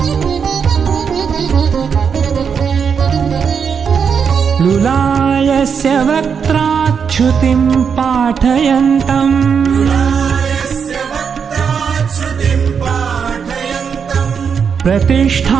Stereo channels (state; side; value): quieter; left; 6.6 dB